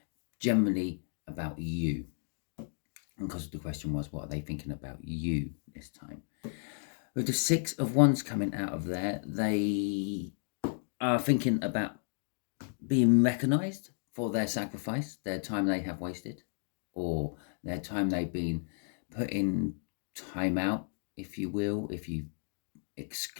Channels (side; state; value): right; silent; digital silence